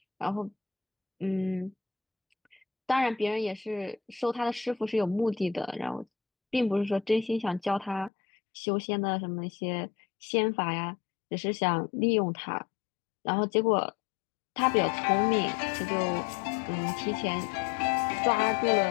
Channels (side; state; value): right; drops out; at 8.1 s